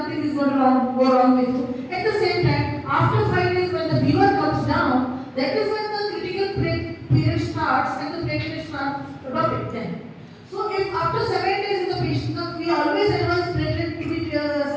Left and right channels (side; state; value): both; identical; correlation 1.00